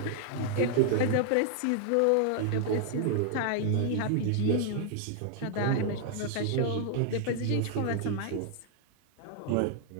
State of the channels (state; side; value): different; both; correlation 0.00